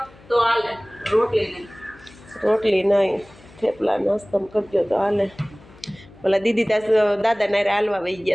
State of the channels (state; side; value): noise; left; hum, 25 dB below the sound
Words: તો હાલે, રોટલી નહીં. રોટલી નહીં, થેપલા નાસ્તામાં કરજો તો હાલે. ઓલા દીદી ત્યાં દાદા નારે હાલવા વહી